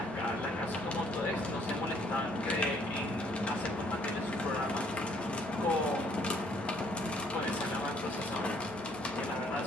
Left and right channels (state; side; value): normal; both; correlation 0.64